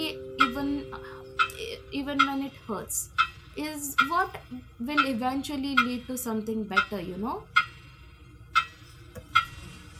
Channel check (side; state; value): both; identical; correlation 1.00